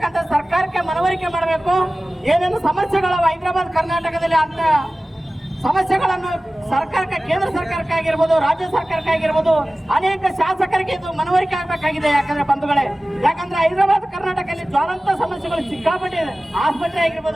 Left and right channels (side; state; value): both; normal; correlation 0.97